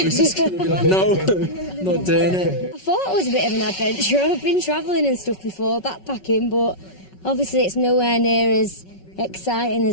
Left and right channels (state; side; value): late; right; 5.4 ms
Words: just going to be like, no, not doing it. I thought it was a bit of an adventure. I've been travelling and stuff before, backpacking, but obviously it's nowhere near as exciting